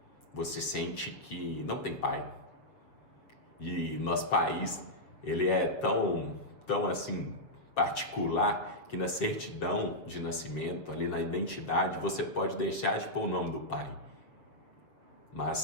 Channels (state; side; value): late; right; 7.1 ms